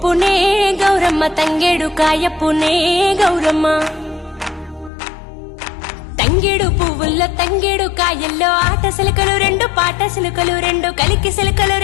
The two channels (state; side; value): drops out; right; at 4.9 s